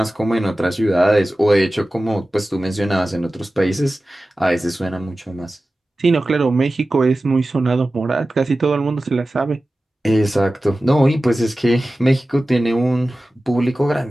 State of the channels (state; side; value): normal; both; correlation 0.95